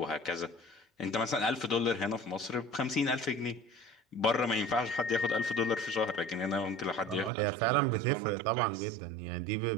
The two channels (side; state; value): left; drops out; at 7.3 s